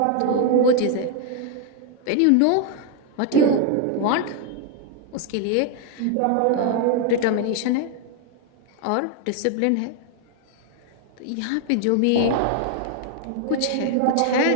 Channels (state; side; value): different; both; correlation 0.00